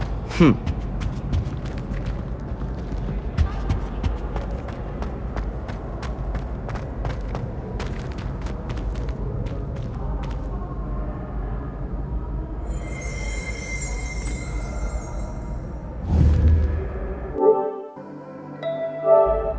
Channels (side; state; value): both; identical; correlation 1.00